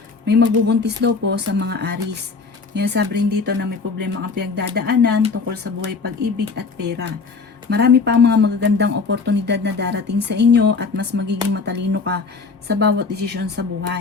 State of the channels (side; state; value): right; quieter; 4.6 dB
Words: May magbubuntis daw po sa mga Aries. Kaya sabi rin dito na may problema ang pinagdadaanan tungkol sa buhay, pag-ibig at pera. Marami pa ang mga magagandang oportunidad na darating sa inyo at mas magiging matalino ka sa bawat desisyon sa